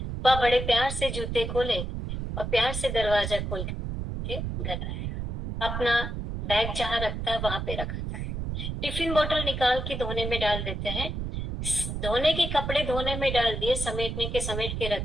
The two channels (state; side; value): noise; right; rumble, 4 dB below the sound